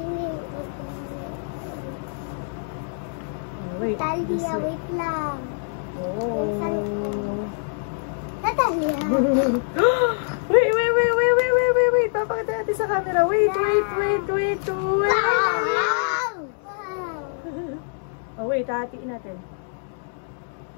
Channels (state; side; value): silent; right; 62 dB below the other